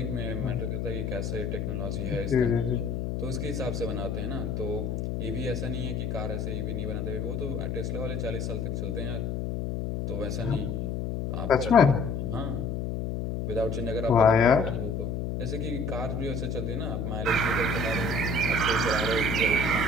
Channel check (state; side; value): noise; left; hum, 2 dB below the sound